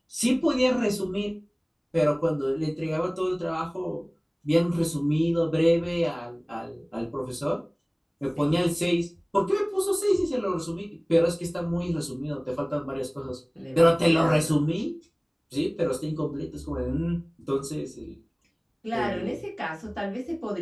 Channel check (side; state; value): both; identical; correlation 1.00